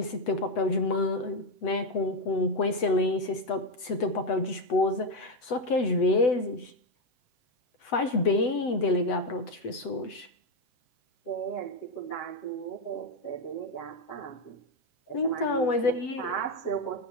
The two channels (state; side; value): late; right; 8.0 ms